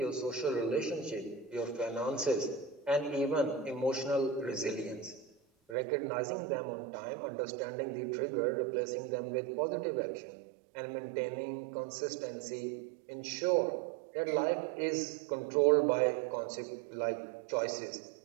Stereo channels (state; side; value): drops out; left; at 5.8 s